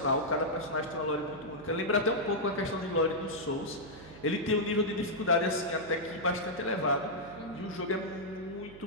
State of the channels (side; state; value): right; noise; hum, 17 dB below the sound